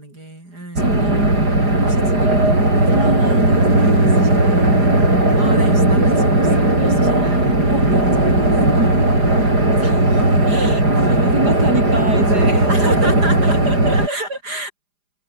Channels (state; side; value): late; left; 4.9 ms